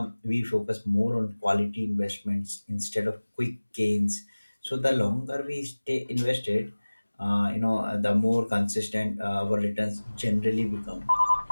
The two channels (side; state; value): both; inverted; correlation -1.00